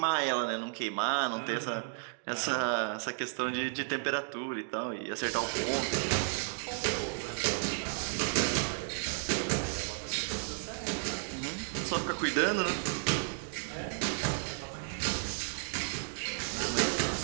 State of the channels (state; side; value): silent; left; digital silence